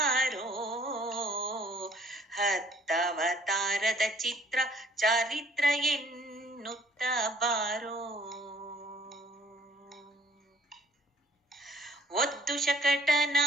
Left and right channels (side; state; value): both; normal; correlation 0.58